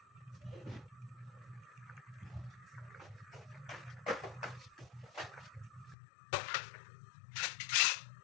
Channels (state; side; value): drops out; right; at 6.0 s